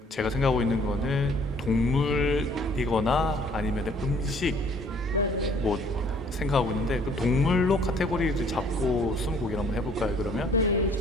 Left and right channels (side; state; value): both; normal; correlation 0.59